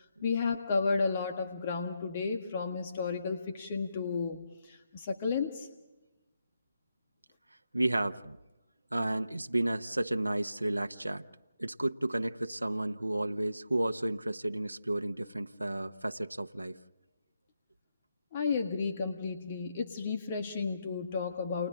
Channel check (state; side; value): inverted; both; correlation -0.84